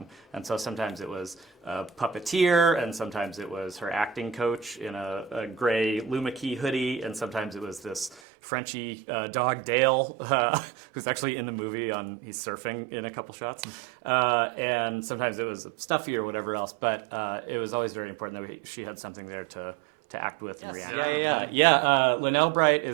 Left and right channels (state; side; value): drops out; left; at 8.2 s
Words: And so sometimes it was a puppeteer, and sometimes it was her acting coach in a gray Luma Key hoodie, and sometimes it was this Frenchie dog Dale, who's actually in the movie. He's surfing in a couple shots, and sometimes it was Stuffy or whatever else. But it was always very important that she had something there to act with and react. Yeah. Linnell Bright